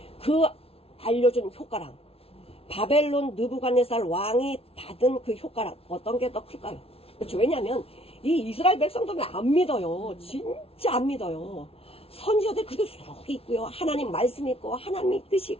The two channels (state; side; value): late; right; 0.28 ms